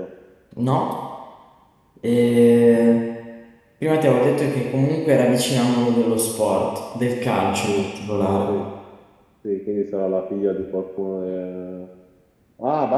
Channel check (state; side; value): identical; both; correlation 1.00